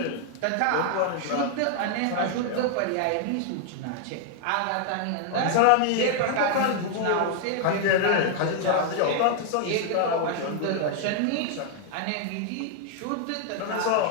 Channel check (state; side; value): different; both; correlation 0.00